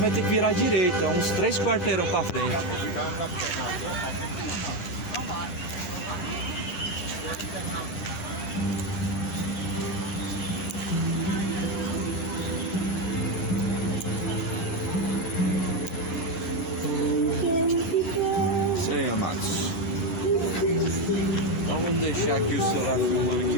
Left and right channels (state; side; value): late; right; 10 ms